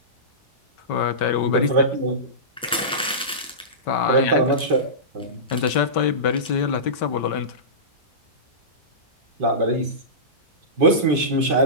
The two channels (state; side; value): normal; both; correlation -0.19